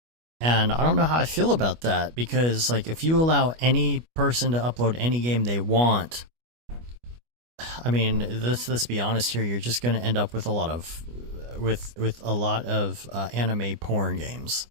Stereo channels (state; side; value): late; left; 25 ms